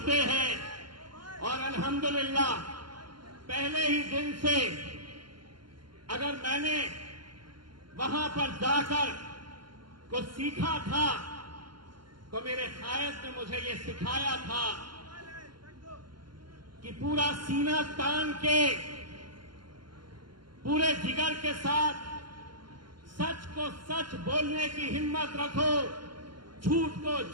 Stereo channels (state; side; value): late; left; 0.72 ms